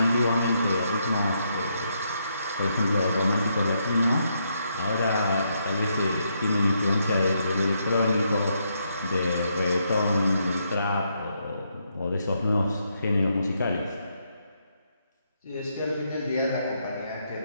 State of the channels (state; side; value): inverted; both; correlation -0.77